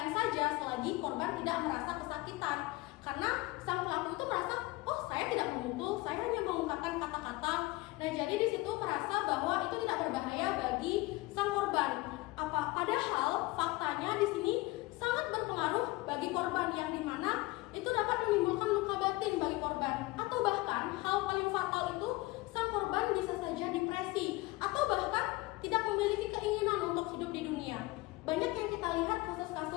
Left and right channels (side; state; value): right; quieter; 21.4 dB